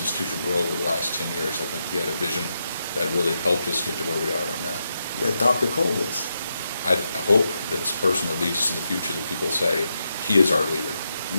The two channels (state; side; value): inverted; both; correlation -0.84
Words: grow over the last 10 years. I think he had a vision that really helped us get to where we are right now. Yeah, Dr. Cole is. I hope that this person that leads us in the future, that people say, he is our leader.